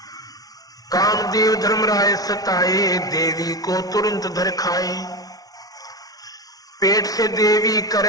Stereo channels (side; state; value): right; late; 0.18 ms